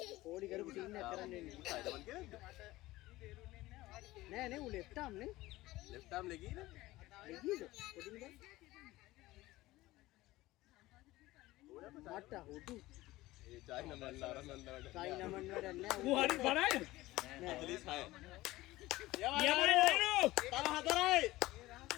පොඩි කරපු ටීම් එකක් කරන්න එන්නේ. නෑ ඌ left arm නේ. Left arm legida. legida. පොඩි නේ. මට හොදු. ඒ චයිනා මන් ආරම්භ චයිනා මන් වැඩ නෑ. ඌ හරි බරයි. 46යි. යමයි නේනු. තව 4යි.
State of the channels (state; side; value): quieter; right; 18.1 dB